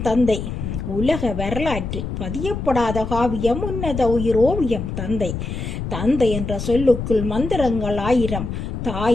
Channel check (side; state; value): left; noise; rumble, 5 dB below the sound